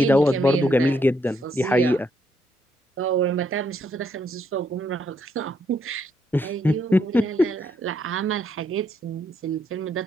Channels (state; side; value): normal; both; correlation 0.75